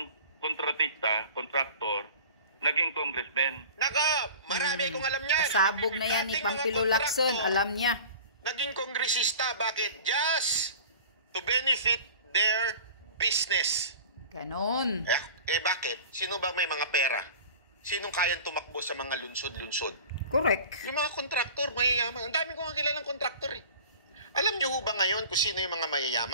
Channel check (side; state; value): both; inverted; correlation -0.40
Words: kontratista, contractor, naging congressmen. Naka, marami kong alam niyan. Pasabog na yan ni Dating mga Pampilo Lacson, kontraktor, alam niya. Naging kongresista, bakit? Just to benefit their business. Ganon. Bakit? Sino ba may mga pera? Sinong kayang tumakbo sa mga lunsod-lunsod? Correct. Yung mga kontraktor, mayayaman. Ang dami ko nga kilalang kontraktor eh. Alam niyo ho ba ngayon kung sino yung mga